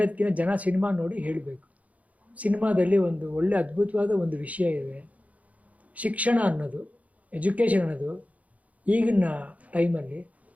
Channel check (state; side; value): late; left; 0.070 ms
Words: ಜನ ಸಿನಿಮಾ ನೋಡಿ ಹೇಳಬೇಕು. ಸಿನಿಮಾದಲ್ಲಿ ಒಂದು ಒಳ್ಳೆ ಅದ್ಭುತವಾದ ಒಂದು ವಿಷಯ ಇದೆ. ಶಿಕ್ಷಣ ಅನ್ನೋದು, ಎಜುಕೇಷನ್ ಅನ್ನೋದು ಈಗಿನ ಟೈಮಲ್ಲಿ